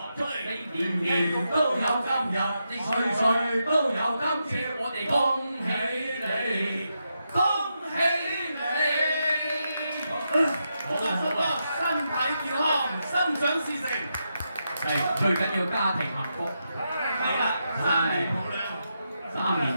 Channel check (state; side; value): inverted; both; correlation -0.85